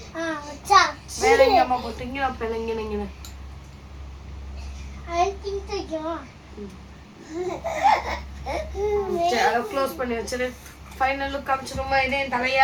வேற எங்க அம்மா பொட்டு இங்க வைப்பேன். இங்க க்ளோஸ் பண்ணி வச்சிரு. ஃபைனல் லுக் காமிச்சிருமா? இதே என்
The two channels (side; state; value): both; identical; correlation 1.00